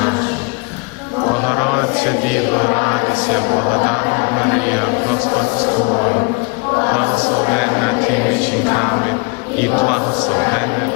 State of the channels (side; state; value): right; quieter; 30.4 dB